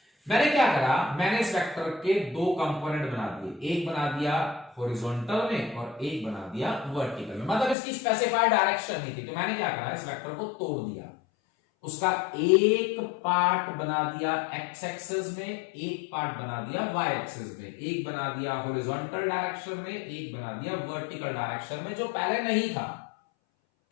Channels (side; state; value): right; drops out; at 7.8 s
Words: मैंने क्या करा, मैंने इस वेक्टर के 2 कंपोनेंट बना दिए, एक बना दिया हॉरिजॉन्टल में और एक बना दिया वर्टिकल में। मतलब इसकी स्पेसिफाइड डायरेक्शन नहीं थी, तो मैंने क्या करा, इस वेक्टर को तोड़ दिया। उसका एक पार्ट बना दिया एक्स एक्सिस में, एक पार्ट बना दिया वाई एक्सिस में, एक बना दिया हॉरिजॉन्टल डायरेक्शन में, एक बना दिया वर्टिकल डायरेक्शन में, जो पहले नहीं था।